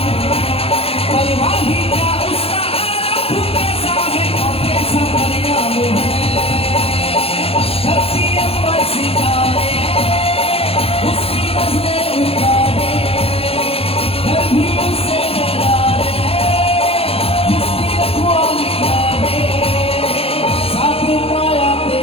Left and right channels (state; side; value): late; right; 0.28 ms